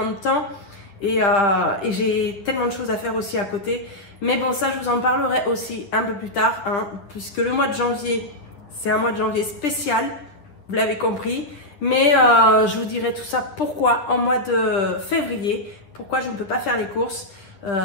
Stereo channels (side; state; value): right; late; 10 ms